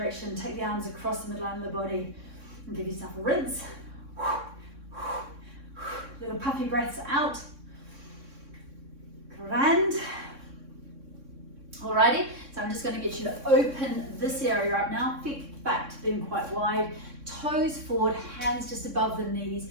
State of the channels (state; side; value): late; left; 3.6 ms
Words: take the arms across the midline of the body and give yourself a rinse. Little puffy breaths out. Grand. Alrighty, so I'm just going to get you to open this area up now. Feet back to being quite wide. Toes forward, hands just above the knees.